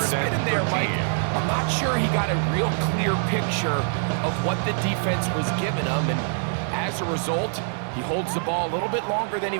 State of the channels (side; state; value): left; silent; 62 dB below the other